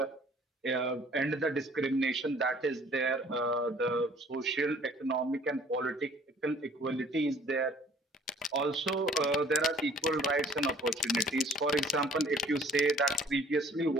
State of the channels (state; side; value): normal; both; correlation 0.55